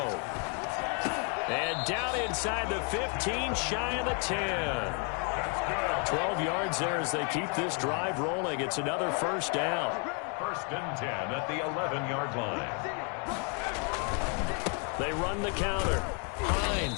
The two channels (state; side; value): quieter; right; 38.9 dB